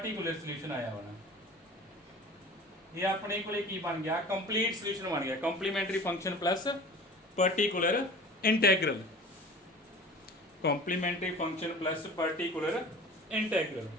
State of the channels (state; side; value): normal; both; correlation 0.40